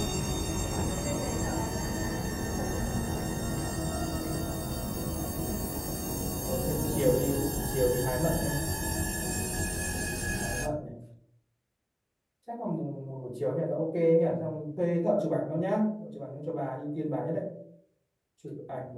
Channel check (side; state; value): both; identical; correlation 1.00